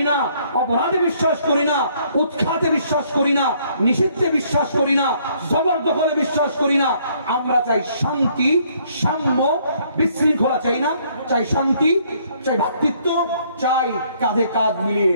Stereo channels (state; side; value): inverted; both; correlation -0.65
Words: না, অপরাধে বিশ্বাস করি না, উৎখাতে বিশ্বাস করি না, নিষিদ্ধে বিশ্বাস করি না, জবরদখলে বিশ্বাস করি না। আমরা চাই শান্তি, সাম্য, বিশৃঙ্খলা চাই না, চাই শান্তি, চাই ভ্রাতৃত্ব, চাই কাঁধে কাঁধ মিলিয়ে,